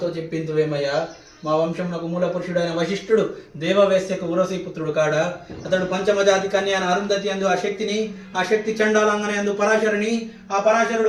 చెప్పింతువేమయ్యా. మా వంశమునకు మూల పురుషుడైన వశిష్ఠుడు దేవవేశ్యకు ఉరసి పుత్రుడు కాడా. అతడు పంచమజాతి కన్యాన అరుంధతి అందు ఆ శక్తి చండాలంగని అందు పరాశరుని, ఆ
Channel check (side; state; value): both; identical; correlation 1.00